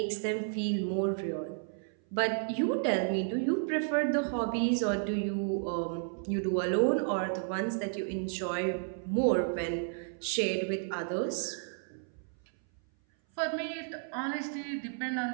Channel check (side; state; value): left; silent; 56 dB below the other